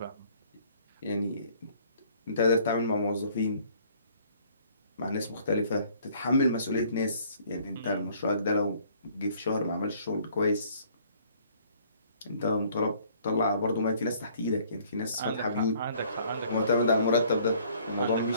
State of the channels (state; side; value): inverted; both; correlation -0.59